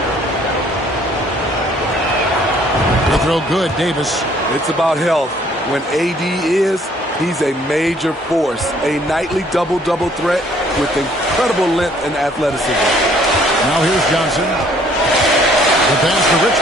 They throw good, Davis. It's about health. When AD is, he's a major force, a nightly double-double threat with incredible length and athleticism. Now here's Johnson. The pass to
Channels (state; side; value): normal; both; correlation 0.61